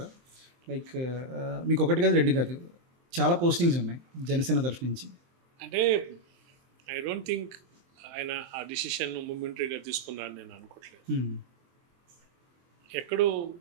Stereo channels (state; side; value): late; left; 23 ms